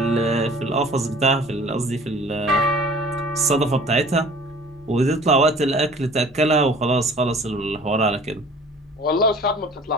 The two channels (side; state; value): both; normal; correlation 0.47